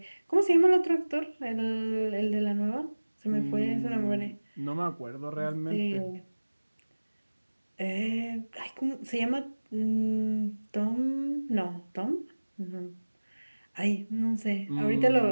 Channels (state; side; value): inverted; both; correlation -1.00